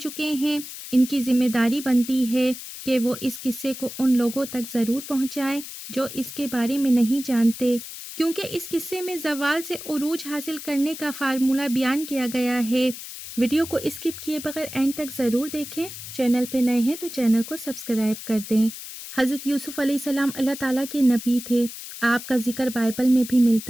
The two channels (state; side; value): noise; left; hiss, 11 dB below the sound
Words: ہیں ان کی ذمہ داری بنتی ہے کہ وہ اس قصے کو ان لوگوں تک ضرور پہنچائیں جو اس کے بارے میں نہیں جانتے، کیونکہ اس قصے میں زوال سے عروج حاصل کرنے کا فارمولہ بیان کیا گیا ہے۔ ویڈیو کو اسکپ کیے بغیر اینڈ تک ضرور دیکھیں۔ چینل پہ نئے ہیں تو چینل کو سبسکرائب کر دیں۔ حضرت یوسف علیہ السلام اللہ تعالیٰ کے نبی تھے۔ آپ کا ذکر بائبل میں بھی